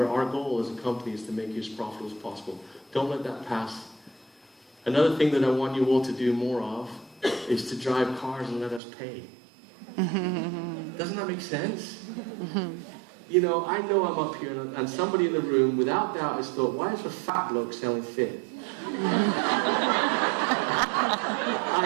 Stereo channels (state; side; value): drops out; left; at 8.8 s